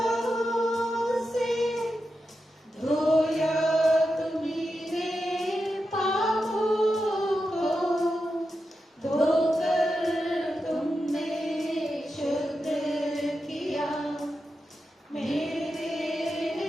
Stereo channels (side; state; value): both; normal; correlation 0.89